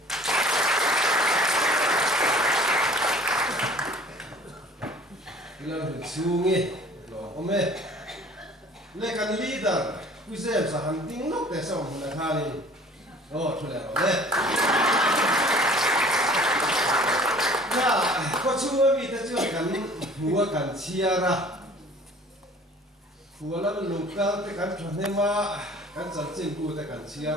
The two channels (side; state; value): both; normal; correlation 0.49